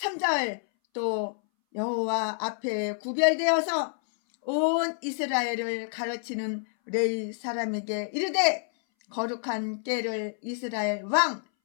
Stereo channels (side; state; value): right; silent; 59 dB below the other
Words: 또 여호와 앞에 구별되어서 온 이스라엘을 가르치는 레위 사람에게 이르되 거룩한 궤를 이스라엘 왕